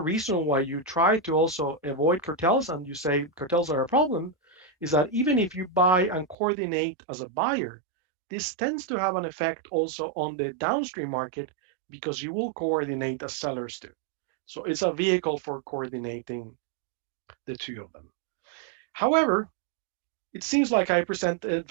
why you try to also avoid cartels and you say cartels are a problem is that even if you buy and coordinate as a buyer, this tends to have an effect also on the downstream market because you will coordinate as sellers do. So it's a vehicle for coordinating the two of them. However, it seems like I present it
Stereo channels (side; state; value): left; drops out; at 6.4 s